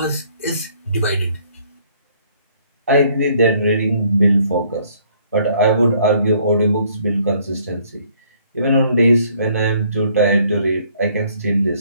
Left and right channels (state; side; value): inverted; both; correlation -0.63